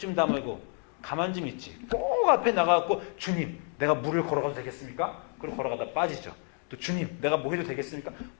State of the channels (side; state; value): right; quieter; 36.8 dB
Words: 다물고 가만 좀 있지. 꼭 앞에 나가갖고 주님 내가 물을 걸어가도 되겠습니까? 그리고 걸어가다 빠지죠. 또 주님 내가 뭐 해도 되겠습니까?